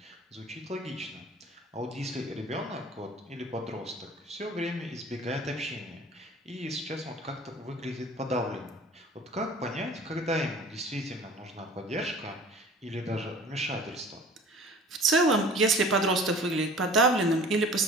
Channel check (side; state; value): both; normal; correlation 0.45